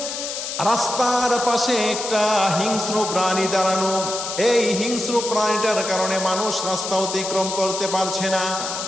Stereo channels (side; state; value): left; noise; hiss, 5 dB below the sound